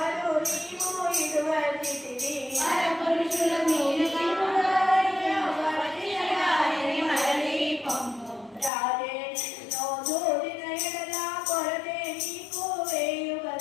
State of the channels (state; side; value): drops out; right; at 8.7 s